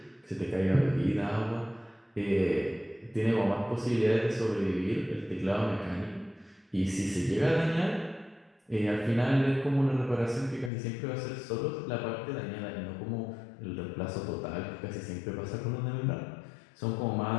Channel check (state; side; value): drops out; right; at 10.7 s